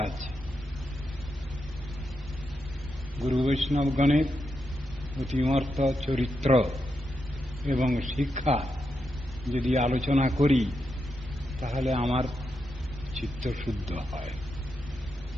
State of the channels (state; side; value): normal; both; correlation 0.85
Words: আছে। গুরু বৈষ্ণবগণের অতিমর্ত চরিত্র এবং শিক্ষা যদি আলোচনা করি তাহলে আমার চিত্ত শুদ্ধ হয়।